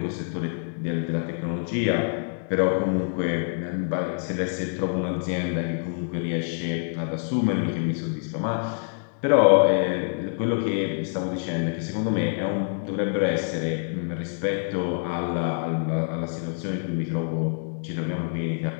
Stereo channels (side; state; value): right; silent; 61 dB below the other